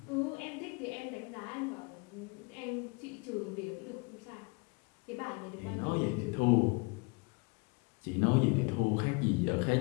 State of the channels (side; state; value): right; quieter; 30.1 dB